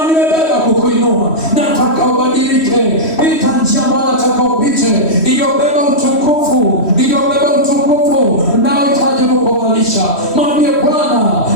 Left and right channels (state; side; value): late; right; 3.1 ms